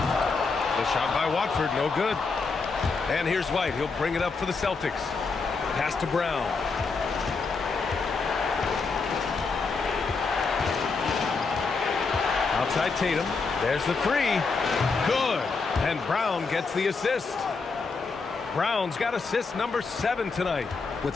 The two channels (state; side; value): quieter; right; 4.5 dB